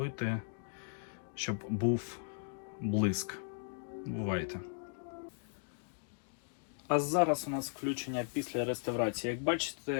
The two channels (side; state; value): right; silent; digital silence